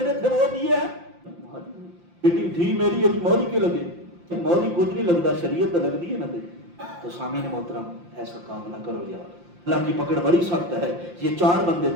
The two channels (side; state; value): left; late; 5.7 ms